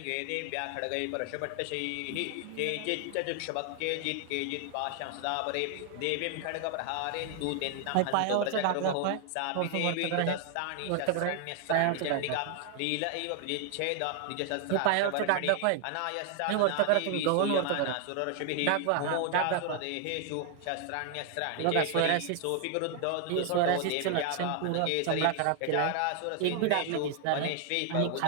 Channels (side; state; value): both; different; correlation 0.00